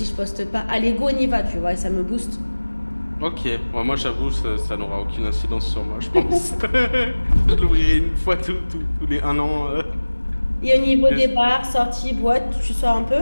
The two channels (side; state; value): both; inverted; correlation -1.00